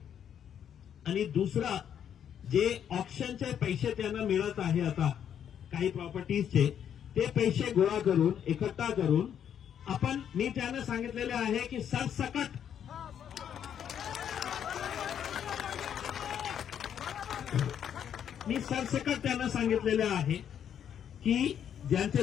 आणि दुसरा जे ऑप्शनचे पैसे त्यांना मिळत आहे आता काही प्रॉपर्टीजचे, ते पैसे गोळा करून एकट्ठा करून आपण, मी त्यांना सांगितलेले आहे की सरसकट त्यांना सांगितलेले आहे की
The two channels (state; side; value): quieter; right; 9.0 dB